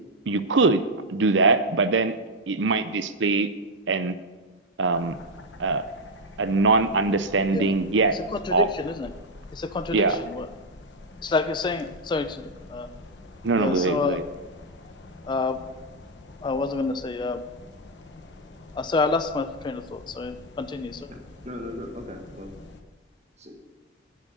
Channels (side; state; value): both; normal; correlation 0.02